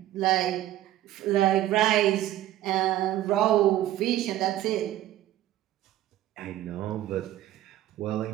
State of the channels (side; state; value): left; quieter; 13.8 dB